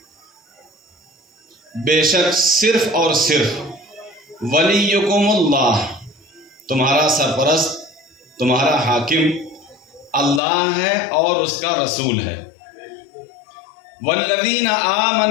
بے شک صرف اور صرف ولیکم اللہ، تمہارا سرپرست، تمہارا حاکم اللہ ہے اور اس کا رسول ہے. والذین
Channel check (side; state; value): right; drops out; at 10.4 s